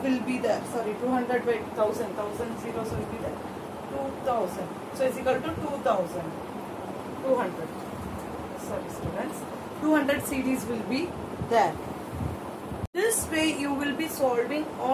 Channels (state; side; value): identical; both; correlation 1.00